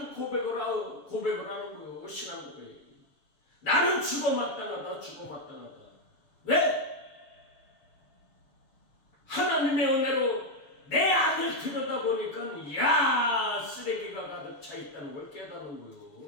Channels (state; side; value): late; right; 6.9 ms